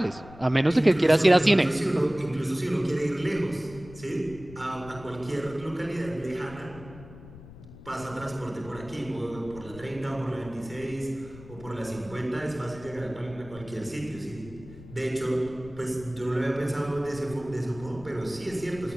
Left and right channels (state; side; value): noise; left; rumble, 17 dB below the sound